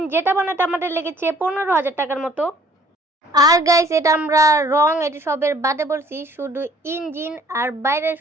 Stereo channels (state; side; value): normal; both; correlation 0.57